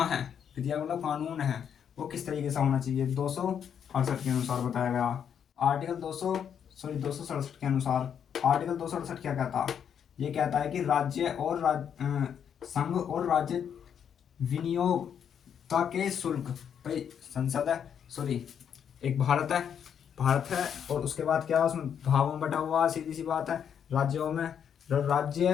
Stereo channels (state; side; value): quieter; right; 8.2 dB